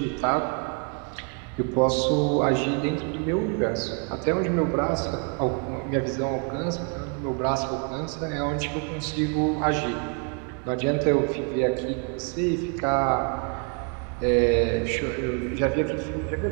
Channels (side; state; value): left; quieter; 37.9 dB